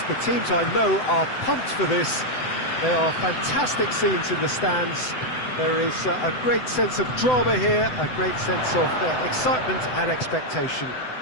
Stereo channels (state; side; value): late; right; 7.9 ms